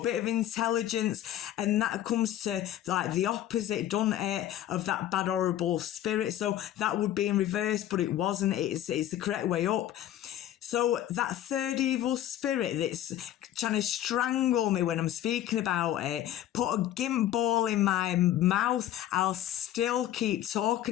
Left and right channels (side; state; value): right; quieter; 12.2 dB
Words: bit of intelligence, and that comes to like the opposite, doesn't it, of that bad, horrible spirit. So that would be in reverse, but it wasn't. It's the correct way up. So that third evil spirit that's trying to strangle me when I'm speaking about it, put a gimp ball in my mouth, I'll still keep